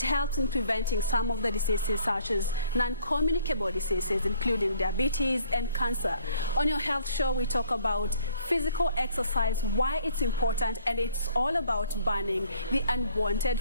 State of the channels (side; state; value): both; inverted; correlation -0.60